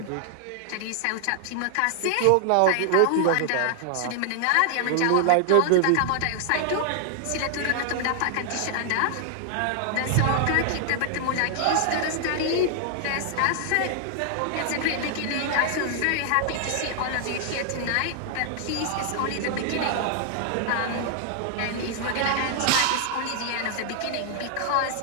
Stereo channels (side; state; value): both; different; correlation 0.00